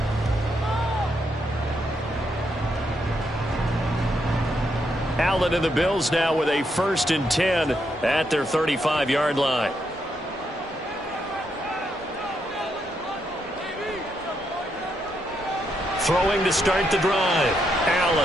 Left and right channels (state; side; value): normal; both; correlation 0.79